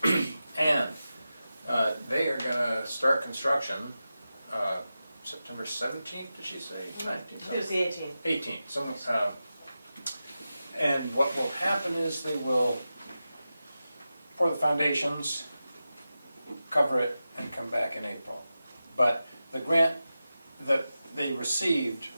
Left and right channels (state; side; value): inverted; both; correlation -0.92